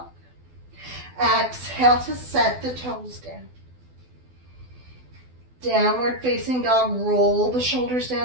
Exhale to set the toes down. Downward facing dog, roll the shoulders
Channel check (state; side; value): late; left; 12 ms